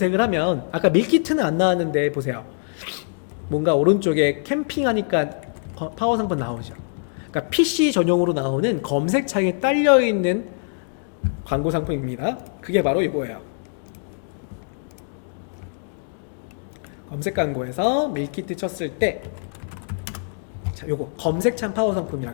하면 아까 밀키트는 안 나왔는데 보세요. 뭔가 오른쪽에 캠핑하니까 파워 상품 나오죠. 그러니까 PC 전용으로 나오는 검색창에 딸려있는 광고 상품입니다. 그게 바로 이거예요. 검색 광고에서 밀키트 쳤을 때, 자, 요거 검색창 파워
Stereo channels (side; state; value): right; silent; digital silence